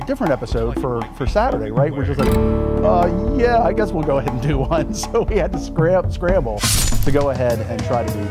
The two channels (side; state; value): both; identical; correlation 1.00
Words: different episode for Saturday, right? We're just like, yeah, I guess we'll go ahead and do one. So we had to scramble to go ahead and try to do